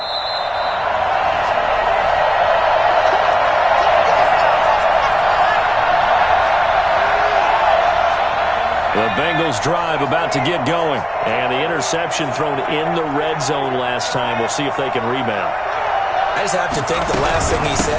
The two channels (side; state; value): both; identical; correlation 1.00